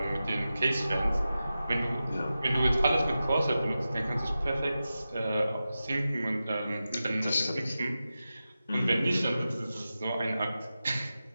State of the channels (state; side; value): inverted; both; correlation -0.93